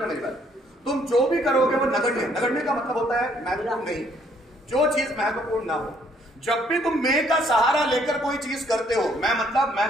मेरी बात, तुम जो भी करोगे वो नगण्य, नगण्य का मतलब होता है महत्वपूर्ण नहीं, जो चीज महत्वपूर्ण ना हो। जब भी तुम मैं का सहारा लेकर कोई चीज करते हो, मैं मतलब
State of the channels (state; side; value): normal; both; correlation 0.66